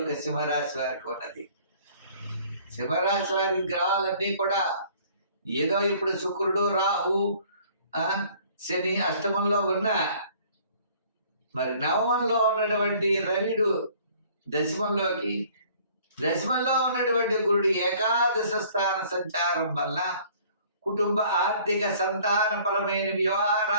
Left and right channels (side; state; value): both; inverted; correlation -0.55